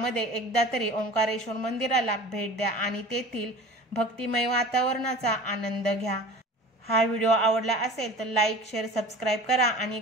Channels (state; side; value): normal; both; correlation 0.40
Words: एकदा तरी ओंकारेश्वर मंदिराला भेट द्या आणि तेथील भक्तिमय वातावरणाचा आनंद घ्या। हा व्हिडिओ आवडला असेल तर लाईक शेअर सबस्क्राईब करा आणि